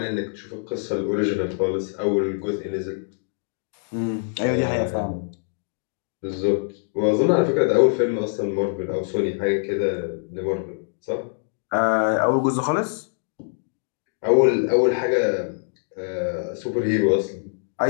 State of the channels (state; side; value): silent; right; digital silence